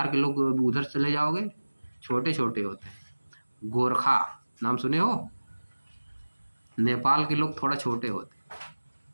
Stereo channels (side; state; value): both; inverted; correlation -1.00